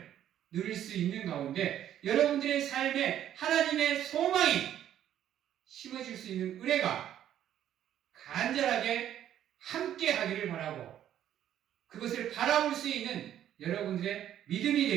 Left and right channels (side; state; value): left; quieter; 11.0 dB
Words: 누릴 수 있는 가운데 여러분들의 삶에 하나님의 소망이 심어질 수 있는 은혜가 간절하게 함께 하기를 바라고 그것을 바라볼 수 있는 여러분들의 믿음이